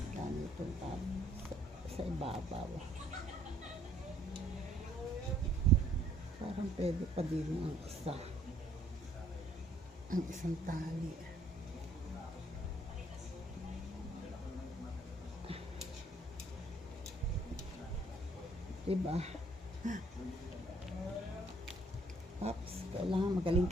ganito sa ibabaw. Parang pwede pa din ang isa. Ang isang tali. Diba? Oops, kailangan magaling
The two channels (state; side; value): normal; both; correlation 0.63